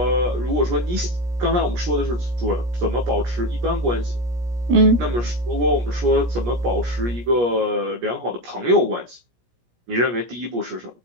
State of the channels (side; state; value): left; late; 17 ms